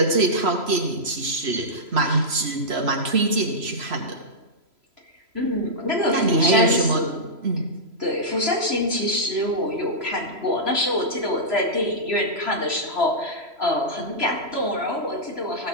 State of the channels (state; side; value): late; left; 3.0 ms